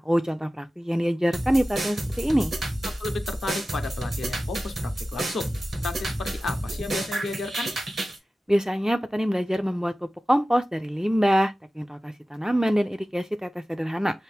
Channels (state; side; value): normal; both; correlation 0.95